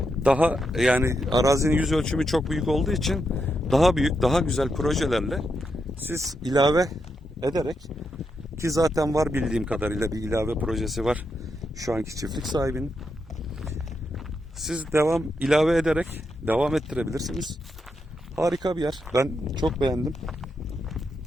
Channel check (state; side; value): normal; both; correlation 0.83